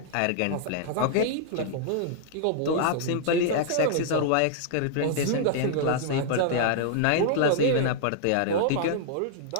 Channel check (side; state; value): both; different; correlation -0.01